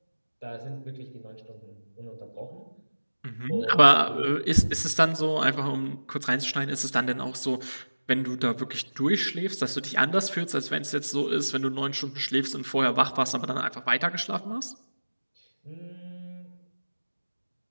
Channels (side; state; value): both; inverted; correlation -1.00